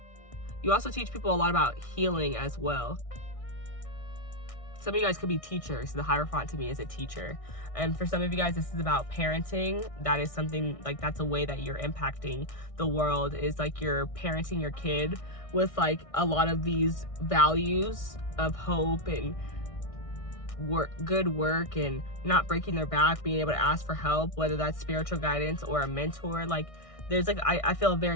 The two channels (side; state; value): right; late; 1.6 ms